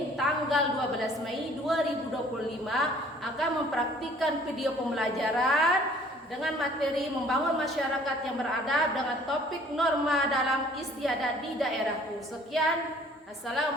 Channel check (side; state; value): both; normal; correlation 0.55